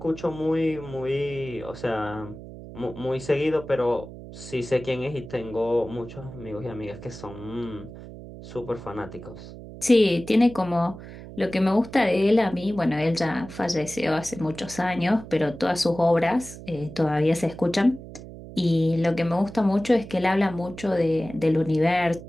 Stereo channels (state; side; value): noise; right; hum, 14 dB below the sound